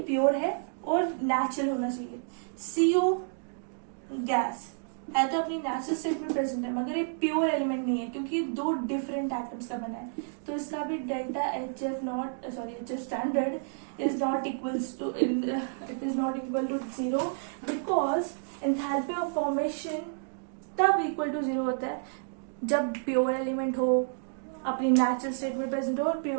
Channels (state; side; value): silent; left; digital silence